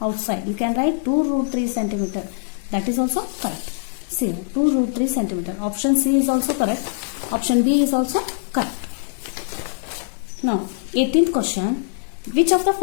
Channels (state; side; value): silent; right; 59 dB below the other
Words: outside. You can write 2 root 3 centimeter. That is also correct. See, 2 root 3 centimeter. Option C is also correct. Option B is also correct. Now 18th question. Which of the